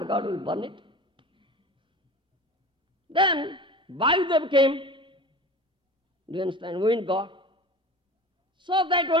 god will burn it? Then Vayudev came. Do you understand? Wind god. So that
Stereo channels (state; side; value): normal; both; correlation 0.36